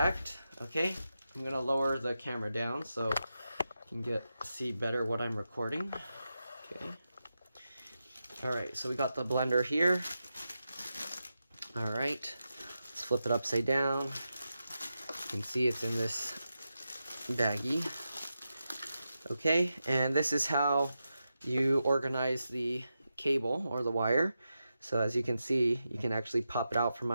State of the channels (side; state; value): both; inverted; correlation -0.89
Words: Okay, I'm gonna lower the camera down so you can see better what I'm recording. Okay. All right, so we got the blender here. All right, let's flip it upside down. You can see it's in this baggie. Okay, and this is how you organize the cable or the wire. So as you can see, you can actually pop it out from